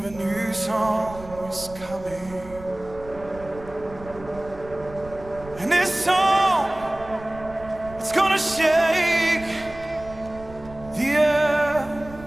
a new song is coming. And this song, it's gonna shake the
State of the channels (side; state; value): right; noise; rumble, 17 dB below the sound